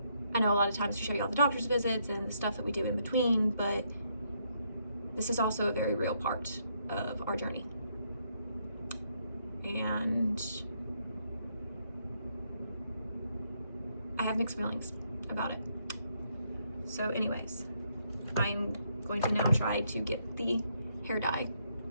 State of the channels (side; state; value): both; inverted; correlation -0.75